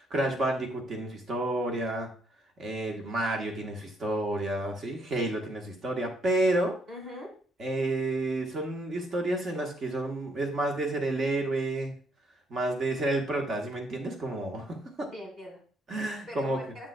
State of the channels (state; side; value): normal; both; correlation 0.71